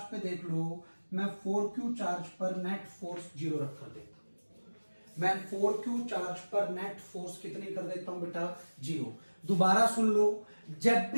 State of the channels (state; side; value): inverted; both; correlation -1.00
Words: पे देख लो, मैं 4Q चार्ज पर नेट फोर्स जीरो रख कर देता हूं। मैं 4Q चार्ज पर नेट फोर्स कितनी कर देता हूं बेटा? जीरो। दोबारा सुन लो, जब